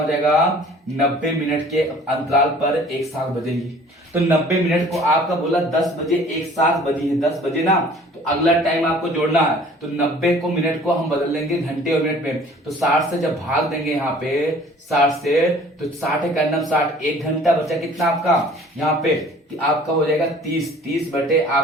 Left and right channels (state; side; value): normal; both; correlation 0.51